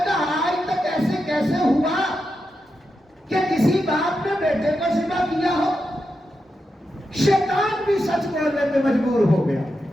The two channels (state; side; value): normal; both; correlation 0.87